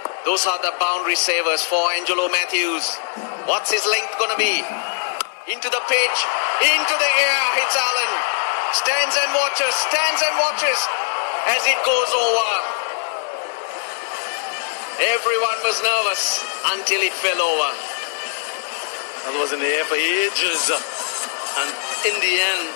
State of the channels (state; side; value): silent; right; 65 dB below the other